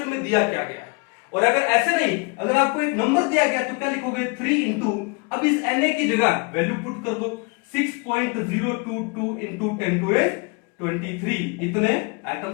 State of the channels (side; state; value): right; quieter; 30.6 dB